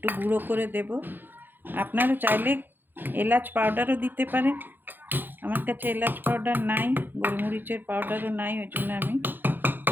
গুঁড়ো করে দেব। আপনারা চাইলে এলাচ পাউডারও দিতে পারেন। আমার কাছে এলাচ পাউডার নাই, গোলমরিচের পাউডারও নাই, ওই জন্য আমি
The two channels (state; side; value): late; left; 0.094 ms